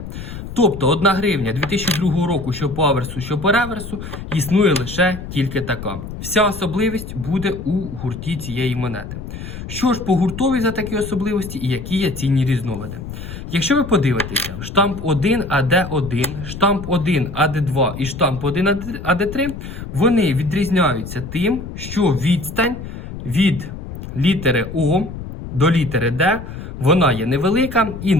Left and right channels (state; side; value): noise; left; rumble, 10 dB below the sound